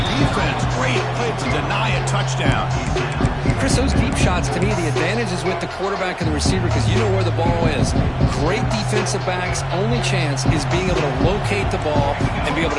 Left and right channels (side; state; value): both; identical; correlation 1.00